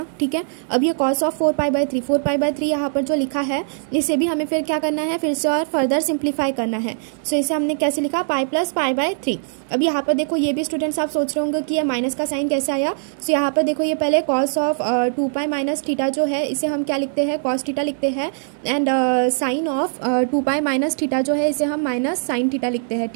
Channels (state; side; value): silent; left; 65 dB below the other